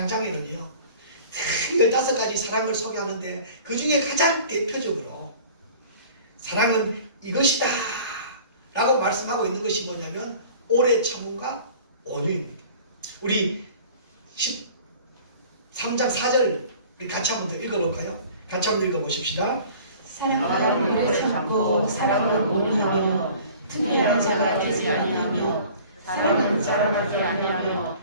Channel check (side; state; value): both; inverted; correlation -0.47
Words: 15가지 사랑을 소개하는데 그 중에 가장 대표적으로 사랑은 이것이다 라고 말씀하고 있는 것이 뭐냐면 오래 참음과 온유입니다. 우리 13장 4절 우리 같이 한번 더 읽어볼까요? 같이 한번 읽어보십시다. 사랑은 오래 참고 사랑은 온유하며 특별한 자가 되지 아니하며 사랑은 자랑하지 아니하며